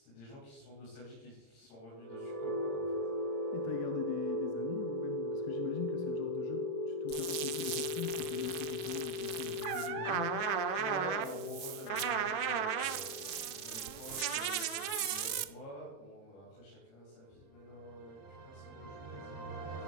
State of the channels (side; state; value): right; late; 35 ms